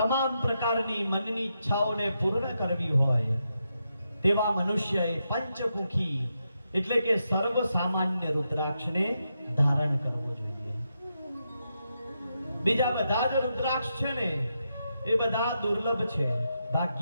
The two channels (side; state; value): both; inverted; correlation -0.84